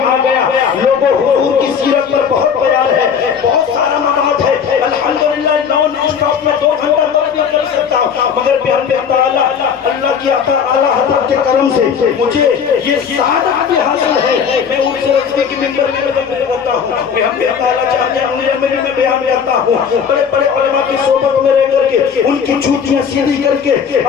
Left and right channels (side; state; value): right; quieter; 7.0 dB